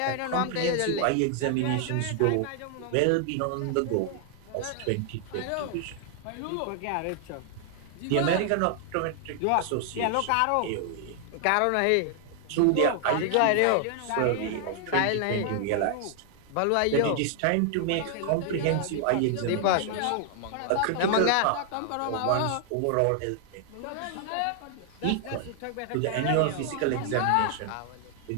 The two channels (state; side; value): different; both; correlation 0.00